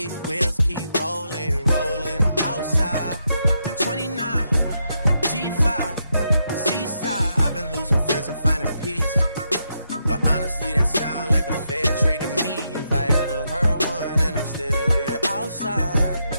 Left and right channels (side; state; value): both; inverted; correlation -0.81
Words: wheels keep rolling, rolling. I'm outside. 29, G5, seaside. I've been losing friends and finding peace. But honestly, that sound like a fair trade to me. If I ever heard one, and I'm still here